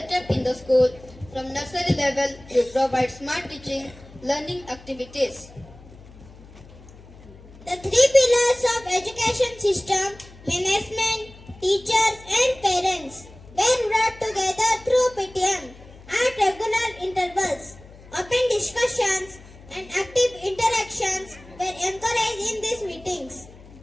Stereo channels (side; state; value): left; noise; hum, 20 dB below the sound